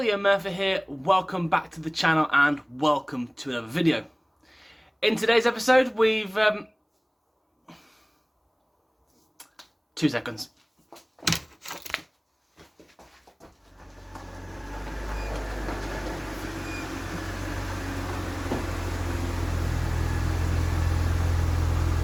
Murfitt here. Welcome back to the channel and welcome to another video. In today's episode, we've 2 seconds.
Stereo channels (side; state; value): both; identical; correlation 1.00